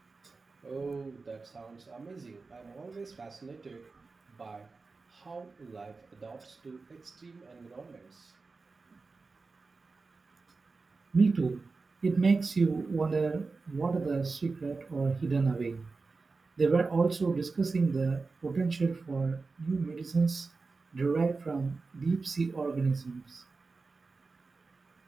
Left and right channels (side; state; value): left; quieter; 4.1 dB